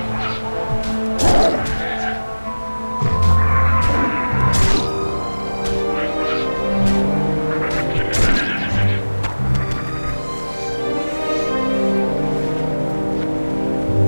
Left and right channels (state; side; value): inverted; both; correlation -1.00